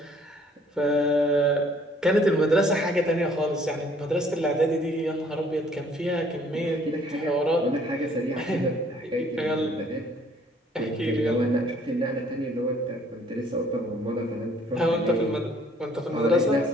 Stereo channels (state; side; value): normal; both; correlation 0.60